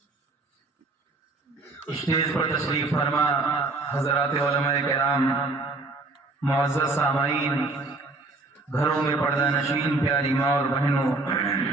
اسٹیج پر تشریف فرما حضرات علماء کرام معزز سامعین گھروں میں پردہ نشین پیاری ماں اور بہنوں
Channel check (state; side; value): quieter; left; 3.4 dB